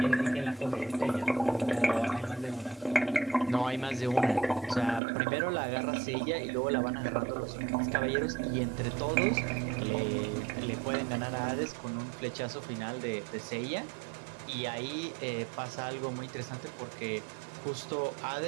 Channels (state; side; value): drops out; left; at 5.0 s